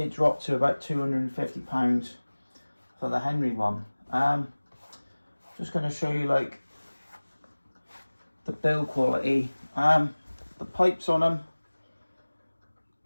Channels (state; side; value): inverted; both; correlation -1.00